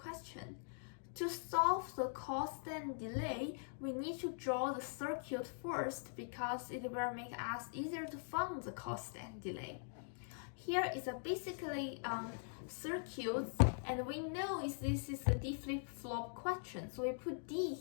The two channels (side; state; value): right; silent; digital silence